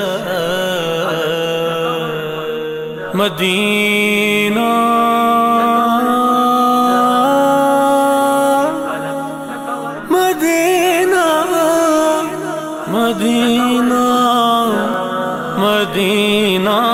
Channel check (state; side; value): identical; both; correlation 1.00